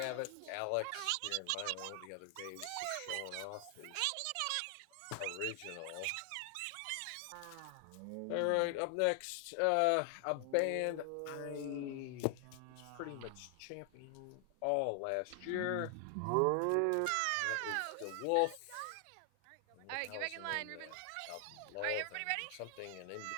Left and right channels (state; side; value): different; both; correlation 0.00